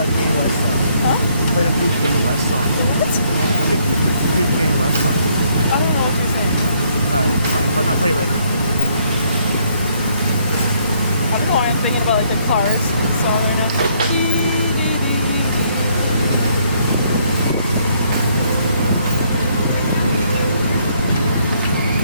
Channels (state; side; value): inverted; both; correlation -0.69